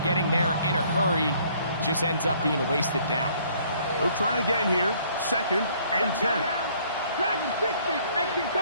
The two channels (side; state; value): both; inverted; correlation -0.61